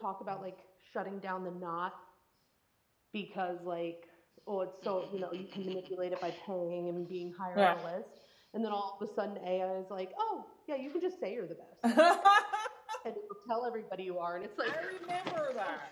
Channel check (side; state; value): both; identical; correlation 1.00